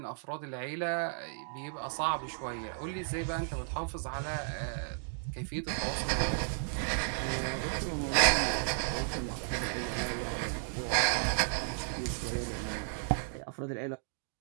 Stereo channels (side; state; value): left; silent; digital silence